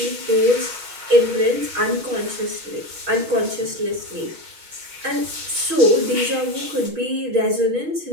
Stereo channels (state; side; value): late; left; 6.3 ms